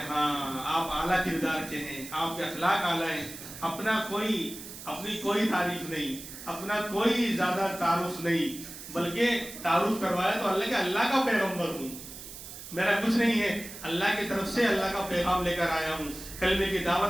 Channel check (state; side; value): noise; right; hiss, 13 dB below the sound